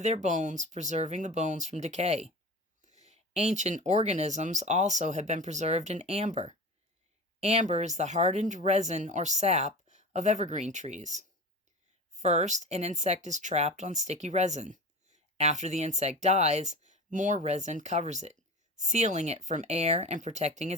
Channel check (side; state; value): both; normal; correlation 0.33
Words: bones, preserving the bones from decay. Ancient organisms also have been preserved in amber. Amber is the hardened resin or sap of evergreen trees. First, an insect is trapped on sticky resin. After the insect dies, more resin covers it, sealing it from air and protecting